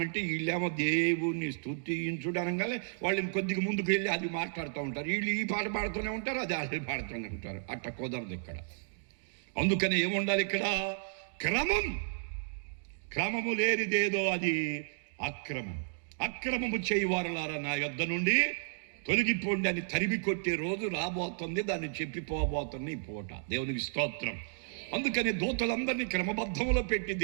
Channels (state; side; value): silent; left; digital silence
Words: వీళ్ళేమో దేవుణ్ణి స్తుతించుడు అనగానే వాళ్ళు ఇంకొద్దిగా ముందుకు వెళ్ళి అది మాట్లాడుతూ ఉంటారు. వీళ్ళు ఈ పాట పాడుతూనే ఉంటారు, అది వాళ్ళు పాడుతూనే ఉంటారు. అట్ట కుదరదు ఇక్కడ. అందుకని ఏముండాలి ఇక్కడ? క్రమము లేనిదేదో అది అక్రమం. అక్రమము చేయవారులారా నా యొద్ద నుండి తొలగిపోండి అని తరిమి కొట్టే రోజు రాబోతుంది. దాన్ని చెప్పిపోబోతుంది ఈ పూట. దేవునికి స్తోత్రం. అందుకని దూతలందరినీ క్రమబద్ధంలో పెట్టి